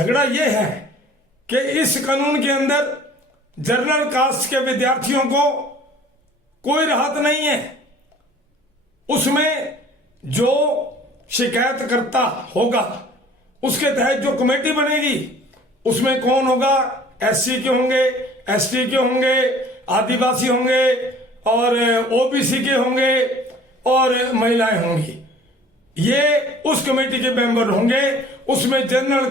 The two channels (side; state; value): both; normal; correlation 0.50